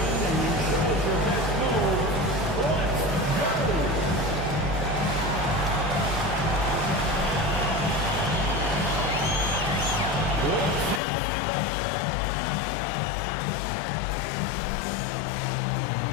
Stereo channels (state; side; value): drops out; right; at 11.0 s